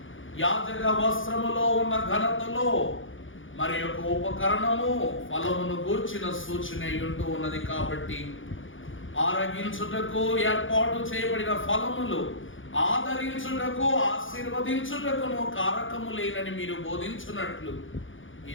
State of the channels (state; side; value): late; right; 0.57 ms